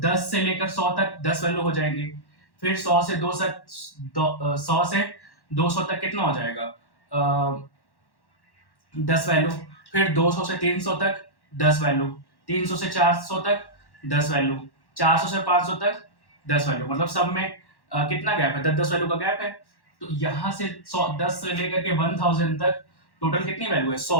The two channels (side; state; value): right; late; 1.1 ms